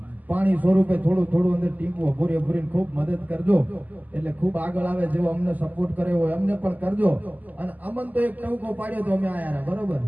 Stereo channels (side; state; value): left; late; 0.080 ms